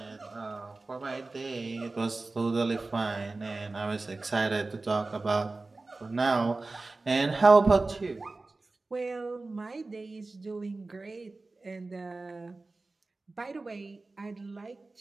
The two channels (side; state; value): left; quieter; 3.4 dB